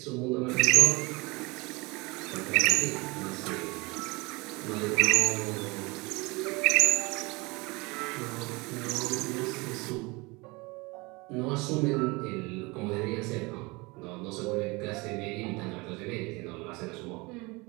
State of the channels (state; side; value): quieter; left; 25.5 dB